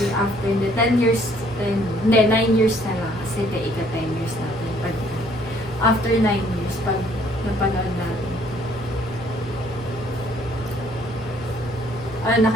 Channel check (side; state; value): both; normal; correlation 0.62